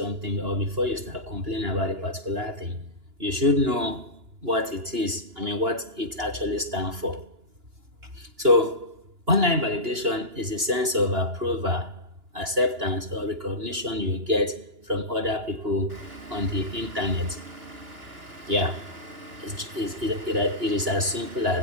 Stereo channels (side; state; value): left; late; 2.9 ms